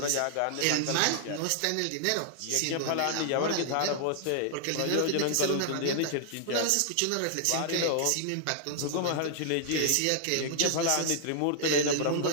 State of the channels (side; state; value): both; different; correlation -0.01